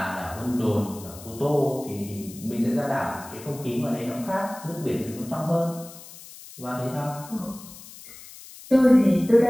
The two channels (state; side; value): noise; left; hiss, 17 dB below the sound